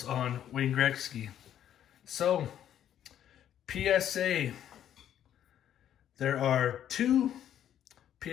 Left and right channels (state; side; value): quieter; right; 10.5 dB